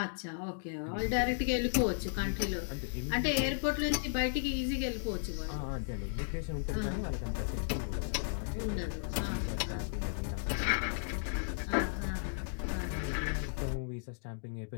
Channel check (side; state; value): right; silent; digital silence